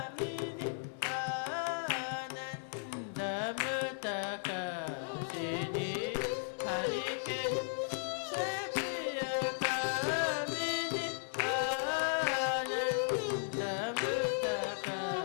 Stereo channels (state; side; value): silent; right; 54 dB below the other